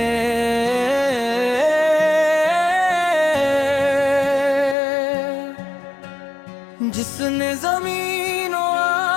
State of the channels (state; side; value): drops out; right; at 4.8 s